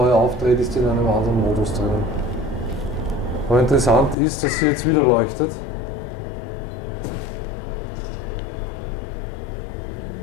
aufdreht, ist die in einem anderen Modus drinnen. Aber interessant ist, dass sie jetzt wieder leuchtet.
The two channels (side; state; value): right; drops out; at 4.2 s